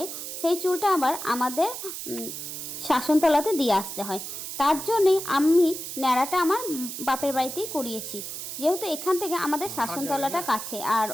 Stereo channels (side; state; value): right; noise; hiss, 7 dB below the sound